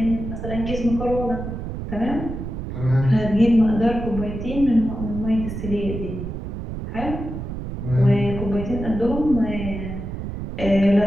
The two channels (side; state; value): right; noise; rumble, 6 dB below the sound